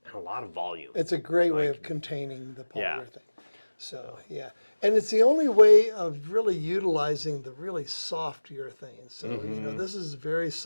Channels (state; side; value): inverted; both; correlation -1.00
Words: and a lot of volume. It's a great way Like, of containing the yeah. polyurethane. So, yeah. And it's the only way of really utilizing the really soft urethane. So, this is very